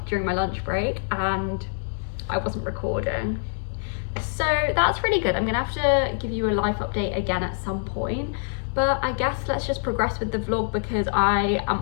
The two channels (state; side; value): silent; right; digital silence